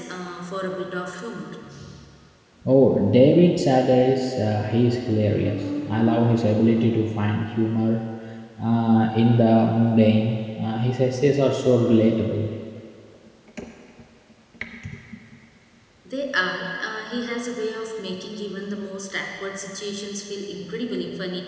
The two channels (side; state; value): both; identical; correlation 1.00